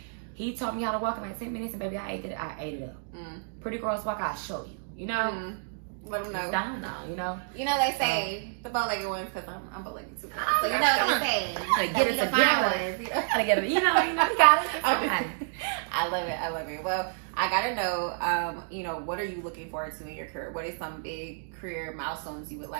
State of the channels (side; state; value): left; silent; digital silence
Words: he taught me how to walk in like 10 minutes, and baby, I ate it up. Pretty girls walk, I'll show you, you know. Let them know. It's down now, you know. You know they say the bow-legged ones, because I'm bow-legged too. So you know what they say. Get it together. Gotta get it. You know, you got it. I love it. Well, I gotta know, you know, what are you looking forward to in your career? What are some big career milestones you would